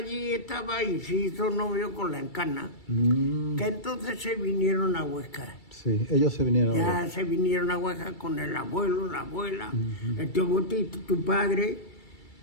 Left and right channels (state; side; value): late; right; 2.3 ms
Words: estaba y se hizo novio con la Encarna, que entonces se vinieron a Huesca. Sí, ellos se vinieron. Ya se vinieron a Huesca con el abuelo, la abuela, el tío Botito, tu padre,